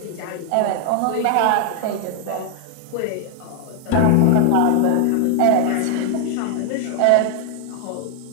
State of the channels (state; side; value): different; both; correlation 0.00